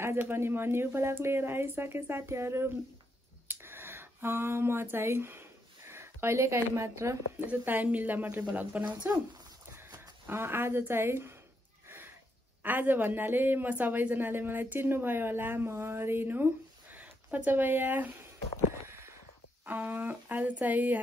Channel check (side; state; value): both; normal; correlation 0.79